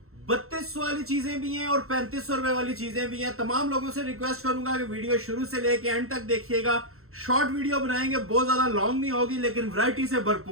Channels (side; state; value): left; late; 0.62 ms